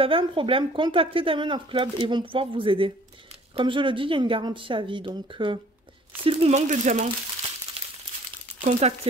un problème, contactez Diamond Art Club et ils vont pouvoir vous aider. Comme je le dis, il y a une garantie à vie. Donc, s'il vous manque des diamants,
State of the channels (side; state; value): both; normal; correlation 0.54